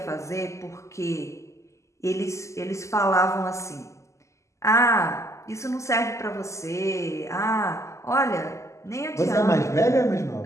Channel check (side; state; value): right; late; 0.14 ms